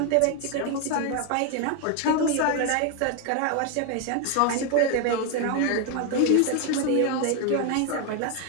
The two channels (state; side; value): different; both; correlation 0.01